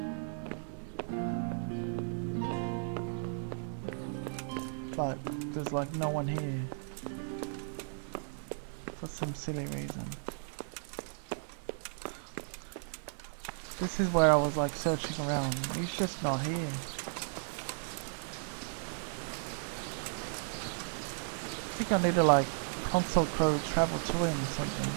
But there's like no one here. For some silly reason. This is where I was like searching around. He's just not here. I think I need to like console crow travel to him or something.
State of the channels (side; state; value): left; silent; digital silence